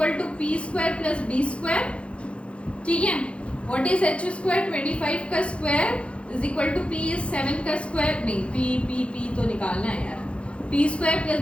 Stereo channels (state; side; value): late; right; 0.060 ms